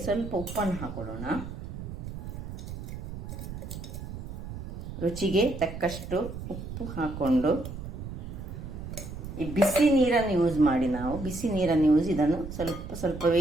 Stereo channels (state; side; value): noise; right; rumble, 9 dB below the sound